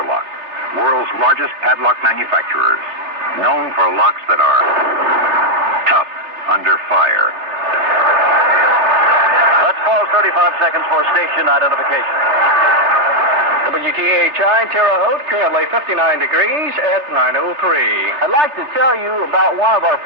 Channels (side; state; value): left; late; 3.2 ms